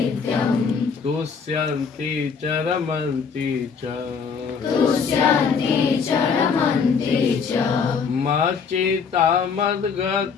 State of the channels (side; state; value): right; quieter; 5.9 dB